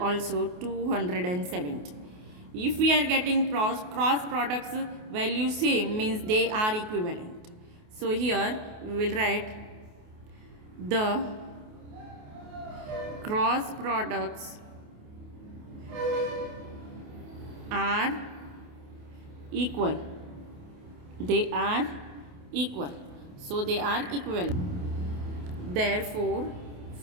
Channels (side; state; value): left; late; 28 ms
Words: also 270. If we are getting cross products value same, means they are equivalent. So here we will write the cross products are equal. They are equal. So they are equivalent. Therefore